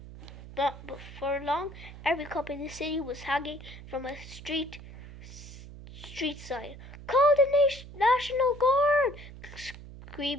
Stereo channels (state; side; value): noise; right; hum, 15 dB below the sound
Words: But for long, every cop in the city was hanging from a street side. "Call the National Guard!"